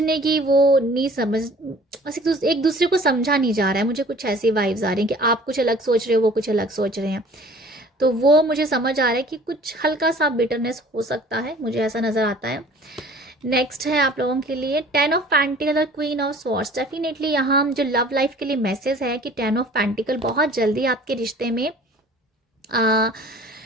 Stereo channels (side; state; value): both; normal; correlation 0.49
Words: की वो नहीं समझ, बस एक दूसरे को समझा नहीं जा रहा है। मुझे कुछ ऐसी वाइब्स आ रही हैं कि आप कुछ अलग सोच रहे हो, वो कुछ अलग सोच रहे हैं। तो वो मुझे समझ आ रहा है कि कुछ हल्का सा बिटरनेस हो सकता है, मुझे ऐसा नज़र आता है। नेक्स्ट है आप लोगों के लिए 10 ऑफ पेंटिकल और क्वीन ऑफ स्वॉर्ड्स। डेफिनेटली यहाँ जो लव लाइफ के लिए मैसेज है कि 10 ऑफ पेंटिकल बहुत जल्दी आपके रिश्ते में आ,